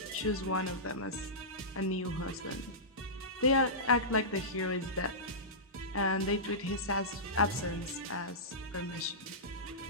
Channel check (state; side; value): normal; both; correlation -0.17